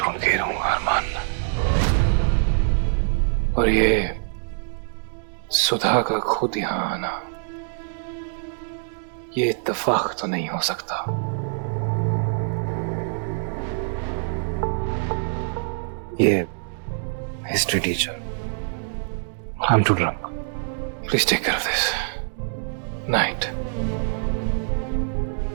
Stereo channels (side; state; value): left; silent; digital silence